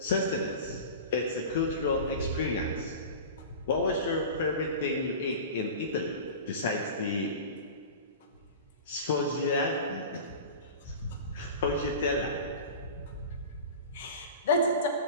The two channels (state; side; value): inverted; both; correlation -0.33